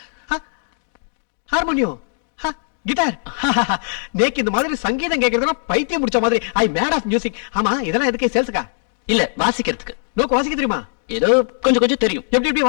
harmonium, guitar. நேக்கு இந்த மாதிரி சங்கீதம் கேட்கறதுனா பைத்தியம் முடிச்ச மாதிரி. I mad of music. ஆமா, இதெல்லாம் எதுக்கு? சேல்ஸுக்கா? இல்ல, வாசிக்கிறதுக்கு. நோக்கு வாசிக்க தெரியுமா? ஏதோ கொஞ்சம் தெரியும். எப்படி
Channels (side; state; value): right; silent; 65 dB below the other